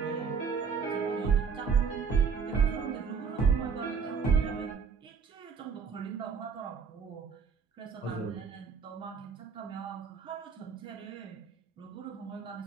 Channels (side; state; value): left; quieter; 5.9 dB